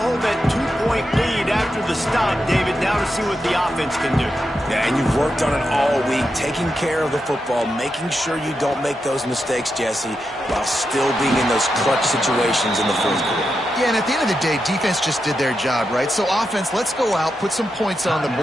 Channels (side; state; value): both; normal; correlation 0.87